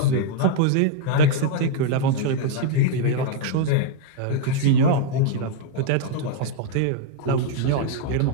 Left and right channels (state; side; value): different; both; correlation 0.00